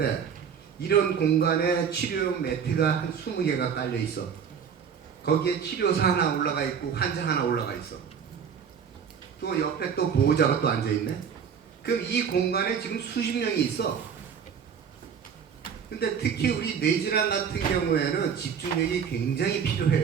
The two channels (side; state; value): left; quieter; 7.2 dB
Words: 이런 공간에 치료용 매트가 한 20개가 깔려 있어. 거기에 치료사 하나 올라가 있고 환자 하나 올라가 있어. 또 옆에 또 보호자가 또 앉아 있네. 그럼 이 공간에 지금 수십 명이 있어. 근데 특히 우리 뇌질환 같은 경우에는 집중력이 굉장히